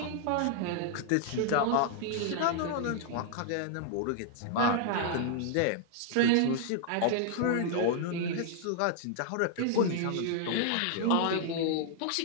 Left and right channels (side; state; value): both; different; correlation 0.00